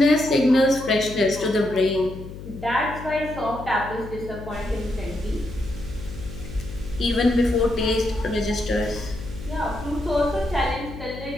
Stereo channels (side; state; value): left; noise; hum, 12 dB below the sound